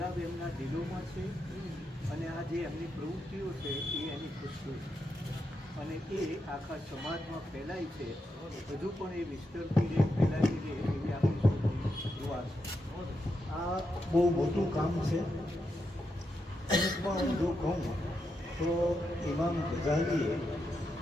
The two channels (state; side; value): normal; both; correlation 0.84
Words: એમના દિલોમાં છે, અને આ જે એમની પ્રવૃત્તિઓ છે એ એની ખુશીઓ છે, અને એ આખા સમાજમાં ફેલાય છે. હજુ પણ એ વિસ્તરતી રહે, ફેલાતી રહે એવી આપણી સૌની દુઆ છે. આ બહુ મોટું કામ છે. અમુકમાં હું જો કહું તો ઇમામ ગઝાલીએ